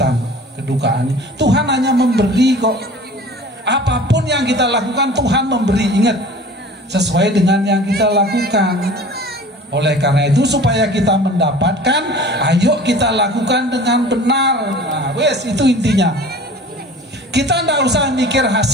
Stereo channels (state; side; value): normal; both; correlation 0.43